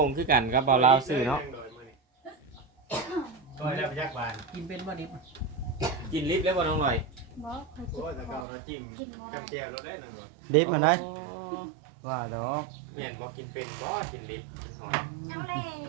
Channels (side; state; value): left; drops out; at 8.5 s